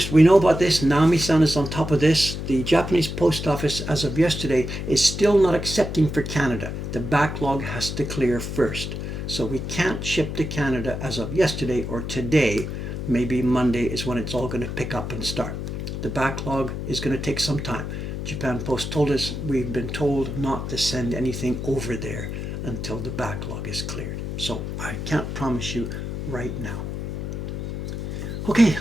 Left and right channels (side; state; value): left; noise; hum, 5 dB below the sound